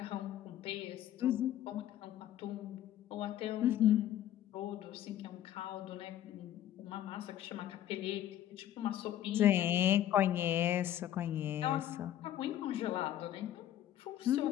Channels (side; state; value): right; quieter; 12.0 dB